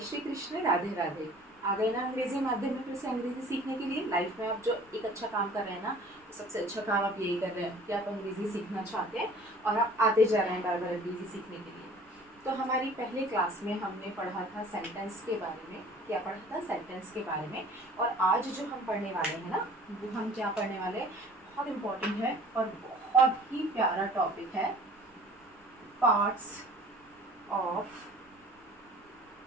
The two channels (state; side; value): normal; both; correlation 0.49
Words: श्री कृष्ण, राधे राधे। आ गए ना अंग्रेजी माध्यम में फिर से अंग्रेजी सीखने के लिए। लाइफ में आप जो एक अच्छा काम कर रहे हैं ना, सबसे अच्छा काम आप यही कर रहे हैं कि आप अंग्रेजी सीखना चाहते हैं और आप आते जा रहे हैं बार बार अंग्रेजी सीखने के लिए। तो हमारी पहले क्लास में हमने पढ़ा था सेंटेंस के बारे में। क्या पढ़ा था? सेंटेंस के बारे में। और आज जो हम पढ़ने वाले हैं ना, वो हम क्या पढ़ने वाले हैं, बहुत इम्पोर्टेंट है और बहुत ही प्यारा टॉपिक है, पार्ट्स ऑफ